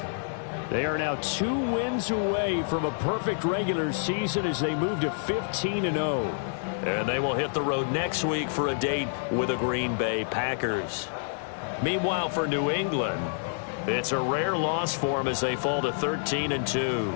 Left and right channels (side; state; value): right; silent; digital silence